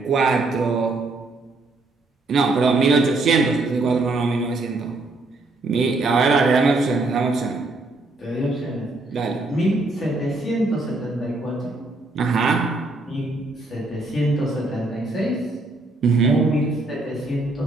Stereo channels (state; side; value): quieter; left; 3.1 dB